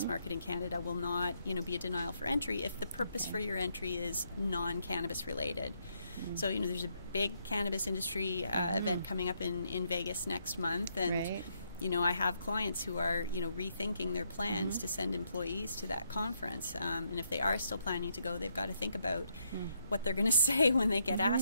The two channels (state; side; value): inverted; both; correlation -0.75